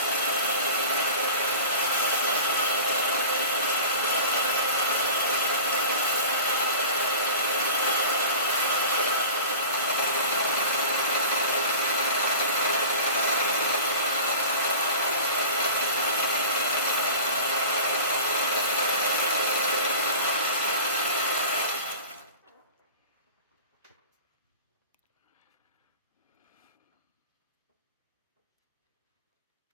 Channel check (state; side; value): inverted; both; correlation -0.36